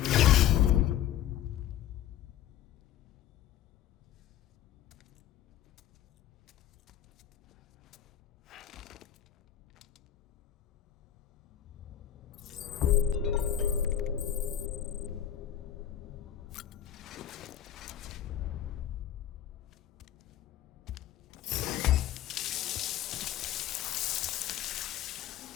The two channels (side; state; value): right; quieter; 10.9 dB